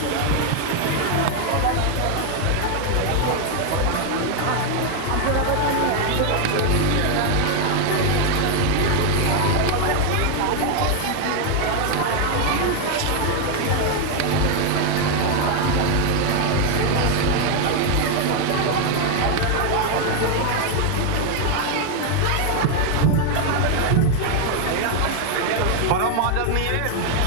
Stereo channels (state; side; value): different; both; correlation 0.01